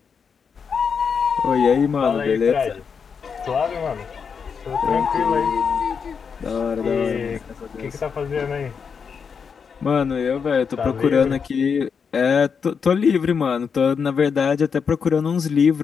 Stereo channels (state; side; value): quieter; right; 6.2 dB